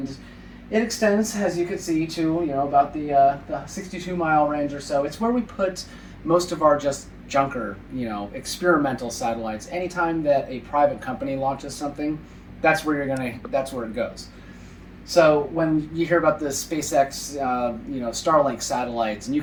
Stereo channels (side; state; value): both; identical; correlation 1.00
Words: it extends, as you can see, to about the 62-mile range or so. It's where we put most of our just junker, experimental satellites. Anytime that a private company launches something, that's where it goes. So when you hear about the SpaceX, Starlink satellites, and you